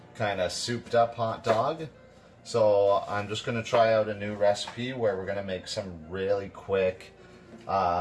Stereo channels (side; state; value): both; identical; correlation 1.00